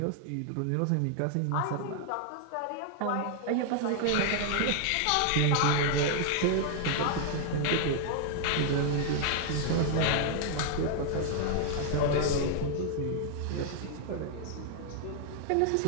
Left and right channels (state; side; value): different; both; correlation 0.00